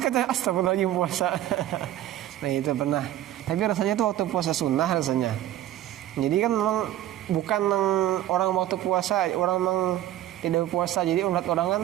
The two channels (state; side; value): quieter; left; 13.1 dB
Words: astagfirullahaladzim puasa. Nah itu pernah. Tapi rasanya itu waktu puasa sunnah rasanya. Jadi kan memang bukan orang waktu puasa, orang memang tidak puasa. Jadi orang kan